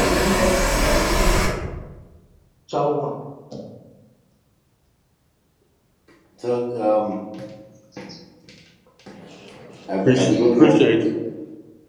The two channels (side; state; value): both; identical; correlation 1.00